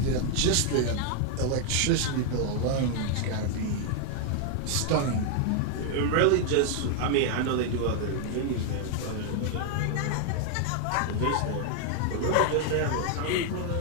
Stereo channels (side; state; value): both; different; correlation 0.00